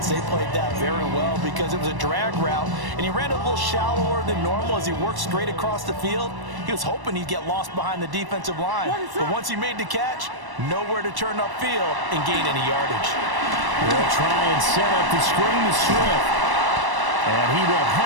They played that very well because it was a drag route, and he ran a little shallower than normal as he worked straight across the field. He was hoping he'd get lost behind the defensive line. But once he made the catch, nowhere to turn upfield and gain any yardage. They'll try and set up the screen to Swift. And he will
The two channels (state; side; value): late; left; 1.1 ms